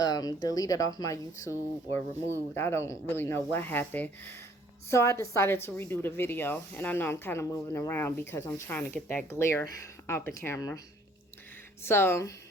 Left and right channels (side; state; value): both; normal; correlation 0.60